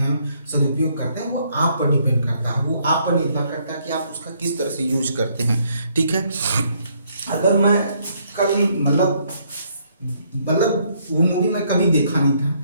सदुपयोग करते हैं, वो आप पर डिपेंड करता है। वो आप पर निर्भर करता है कि आप उसका किस तरह से यूज करते हैं, ठीक है। अगर मैं कभी मतलब वो मूवी मैं कभी देखा नहीं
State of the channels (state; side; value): inverted; both; correlation -0.69